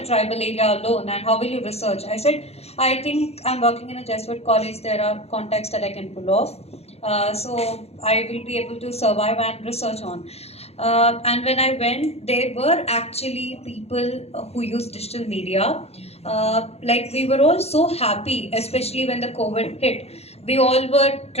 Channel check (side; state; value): right; late; 0.30 ms